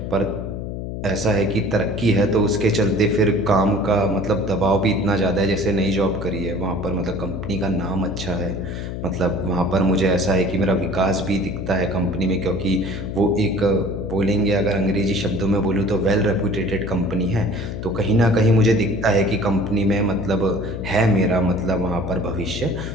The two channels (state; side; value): noise; left; hum, 6 dB below the sound